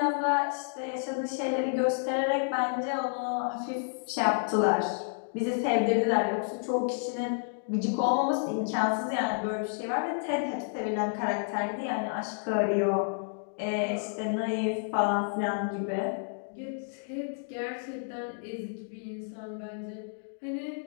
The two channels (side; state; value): right; silent; digital silence